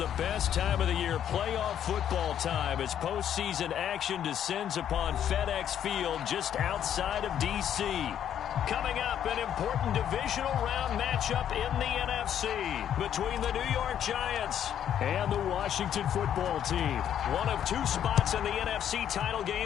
best time of the year, playoff football time, as postseason action descends upon FedEx Field just outside of D.C. Coming up, an important divisional round matchup in the NFC between the New York Giants and the Washington football team. One of two spots in the NFC title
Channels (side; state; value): right; quieter; 9.8 dB